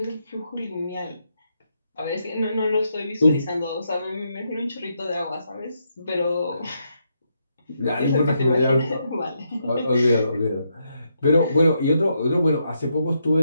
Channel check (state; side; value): inverted; both; correlation -0.80